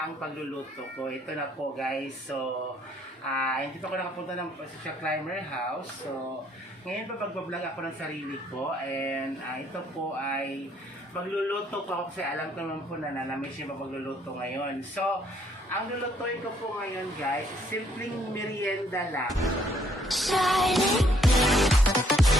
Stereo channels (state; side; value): normal; both; correlation 0.66